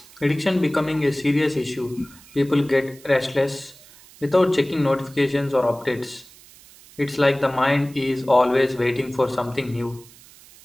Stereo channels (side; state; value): right; noise; hiss, 23 dB below the sound